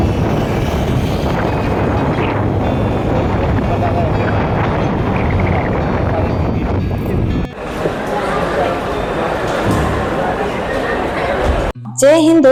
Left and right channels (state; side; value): identical; both; correlation 1.00